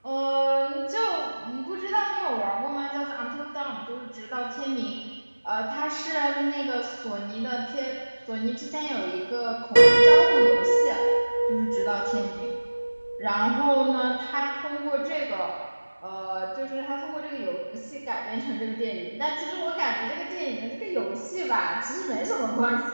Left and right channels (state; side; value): inverted; both; correlation -1.00